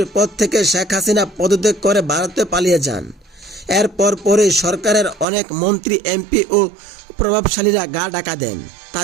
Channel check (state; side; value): drops out; left; at 5.2 s